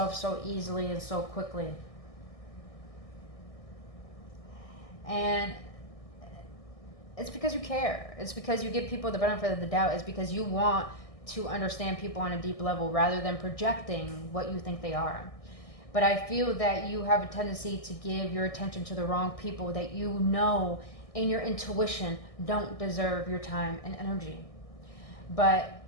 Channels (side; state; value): right; late; 1.6 ms